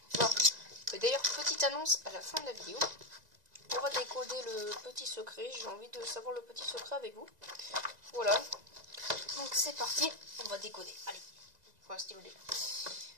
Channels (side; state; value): left; late; 2.0 ms